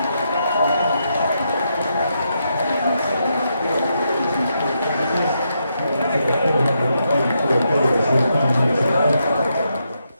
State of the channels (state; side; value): inverted; both; correlation -0.80